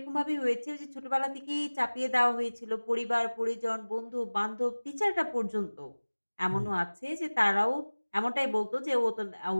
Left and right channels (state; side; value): inverted; both; correlation -1.00